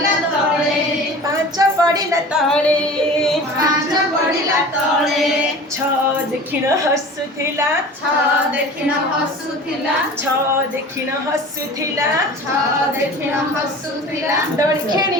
तळे पांच पड़िला तळे पांच पड़िला तळे छ देखिण हसुथिला छ देखिण हसुथिला छ देखिण हसुथिला छ देखिण हसुथिला दोଳି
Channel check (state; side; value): normal; both; correlation 0.39